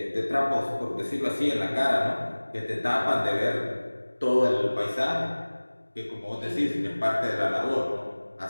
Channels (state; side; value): inverted; both; correlation -1.00